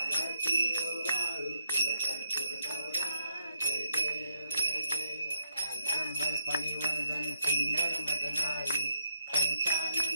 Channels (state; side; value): inverted; both; correlation -0.79